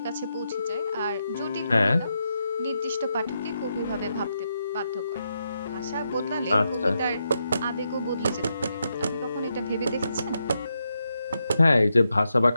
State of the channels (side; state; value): both; inverted; correlation -0.83